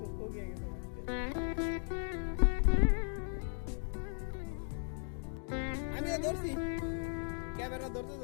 গিয়ে গেছে আমিও ধরছি ক্যামেরা ধরতে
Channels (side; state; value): right; silent; 53 dB below the other